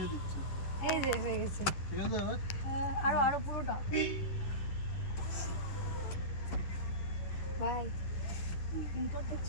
দিচ্ছি। এই যে হয়ে গেছে। ঠিক আছে এবার আরো পুরোটা ভাই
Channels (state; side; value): late; right; 11 ms